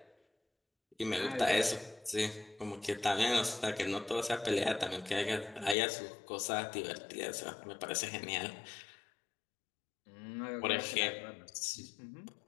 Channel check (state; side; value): drops out; right; at 5.8 s